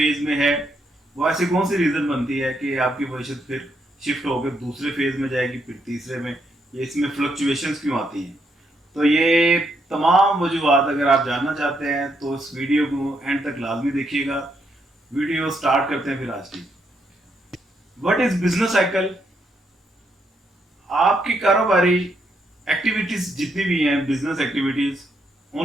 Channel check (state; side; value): normal; both; correlation 0.77